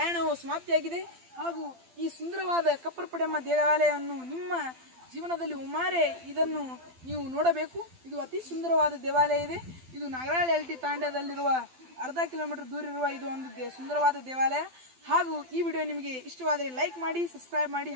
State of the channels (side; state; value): left; late; 12 ms